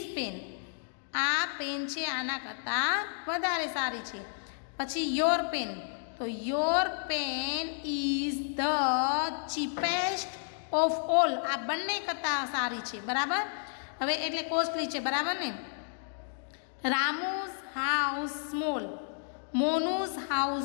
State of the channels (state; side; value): silent; right; digital silence